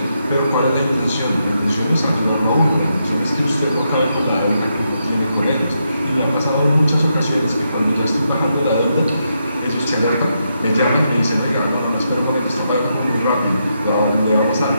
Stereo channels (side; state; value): both; inverted; correlation -0.82